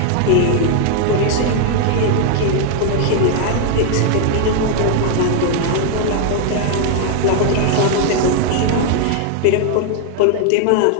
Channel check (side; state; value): both; different; correlation 0.00